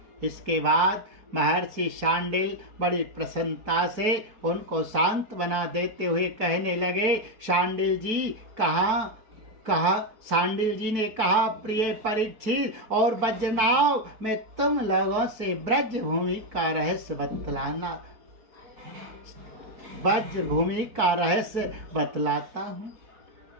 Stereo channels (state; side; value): late; left; 4.6 ms